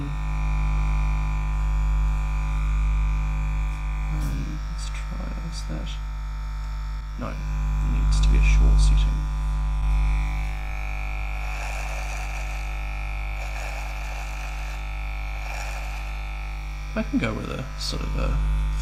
Let's try, is that? No, it needs to be a short setting. I can go with a sort of a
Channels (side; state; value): both; identical; correlation 1.00